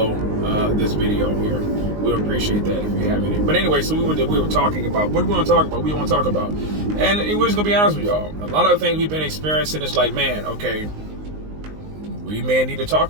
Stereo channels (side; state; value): left; late; 19 ms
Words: this video here. We'll appreciate that if you have any. But anyway, so we were talking about what do we want to talk about. And we're just gonna be honest with y'all. A lot of the things we've been experiencing is like, man, okay, we may need to talk